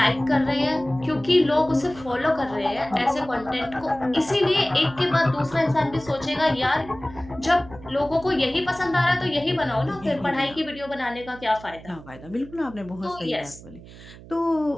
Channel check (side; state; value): right; noise; hum, 18 dB below the sound